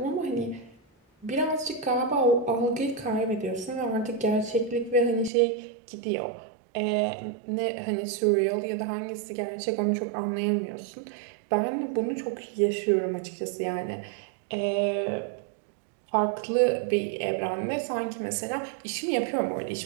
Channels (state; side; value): drops out; left; at 5.3 s